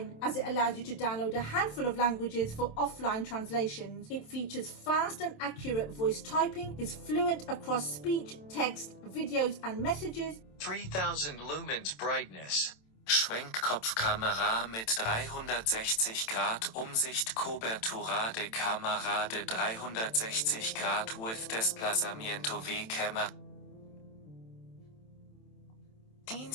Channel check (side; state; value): right; late; 27 ms